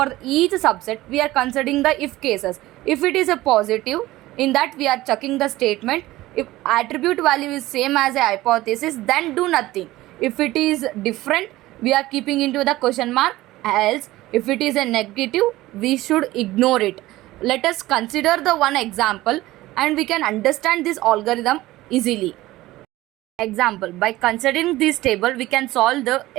each subset, we are considering the if cases. If it is a positive, in that we are checking the statement. If attribute value is same as a hypothesis, then do nothing. If it is different, we are keeping into the question mark. Else, if it is a negative, we should ignore it. Let us consider the one example and we can understand this algorithm easily. Example, by considering this table, we can solve the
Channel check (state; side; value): quieter; left; 17.3 dB